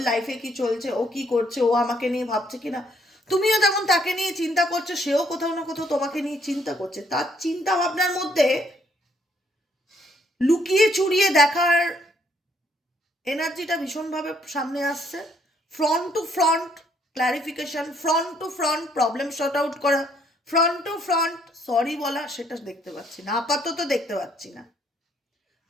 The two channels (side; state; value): both; normal; correlation 0.68